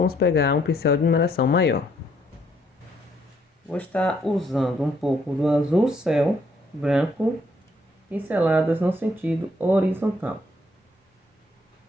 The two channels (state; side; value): normal; both; correlation 0.69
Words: pegar um pincel de numeração maior. Vou estar usando um pouco do azul céu, branco, pinceladas no sentido horizontal.